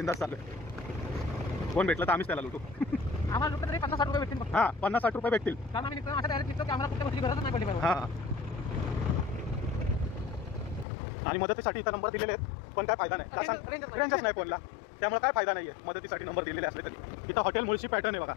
चाललोय. कोण भेटलं तर आम्हीच त्याला लुटू. आम्हाला लुटलं तरी 50-60 रुपये भेटतील. हां, 50-60 रुपये भेटतील. कारण आम्ही अशा डायरेक्ट निघतो की आम्हाला कुठल्या गोष्टी गरजच नाही पडली. हां, आणि मदतीसाठी इथं नंबर दिलेले आहेत, पण काय फायदा नाही, का सांग, रेंजच नाही फोनला, त्यामुळे काय फायदा नाही आहे. मदतीसाठी नंबर दिलेले असले तरी. इथं हॉटेल मुळशी पॅटर्न आहे बघा,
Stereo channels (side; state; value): right; drops out; at 10.9 s